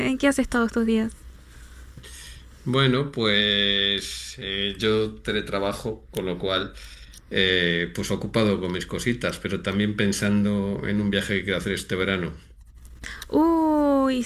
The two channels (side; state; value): both; identical; correlation 1.00